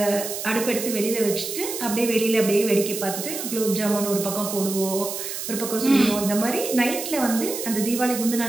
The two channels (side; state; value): right; noise; hiss, 6 dB below the sound